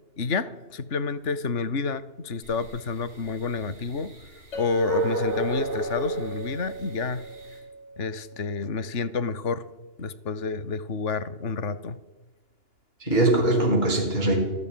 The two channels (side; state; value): right; late; 2.9 ms